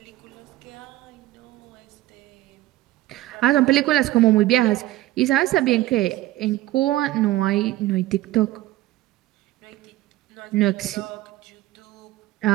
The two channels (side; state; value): left; quieter; 16.4 dB